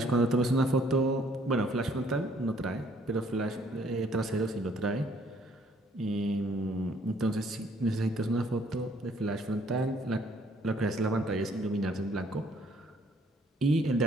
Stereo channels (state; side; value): normal; both; correlation 0.63